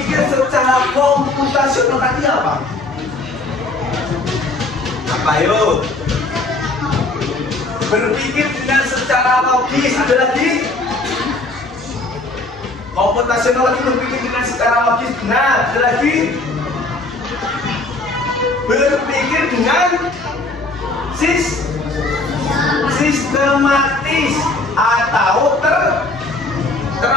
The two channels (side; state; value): right; quieter; 3.0 dB